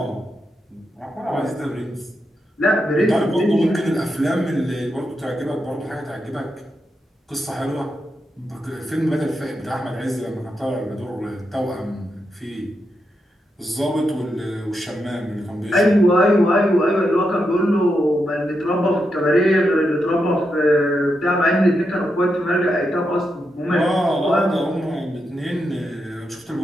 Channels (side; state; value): both; normal; correlation 0.85